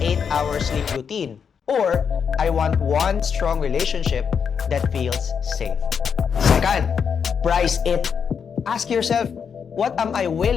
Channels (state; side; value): quieter; right; 6.8 dB